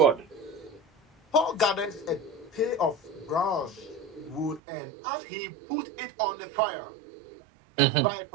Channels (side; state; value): left; drops out; at 4.6 s